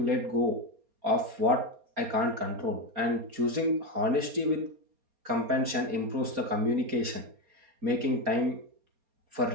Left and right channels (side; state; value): left; late; 4.3 ms